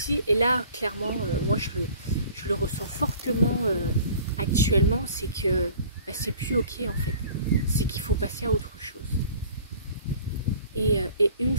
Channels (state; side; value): inverted; both; correlation -0.49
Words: et là clairement, moi je le ressens fortement actuellement, c'est que c'est plus ok en fait, c'est qu'il faut passer à autre chose. Et une